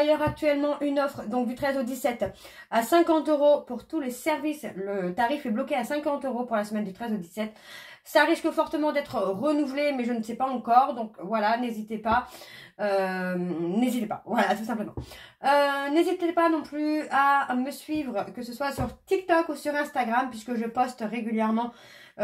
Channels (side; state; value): both; identical; correlation 1.00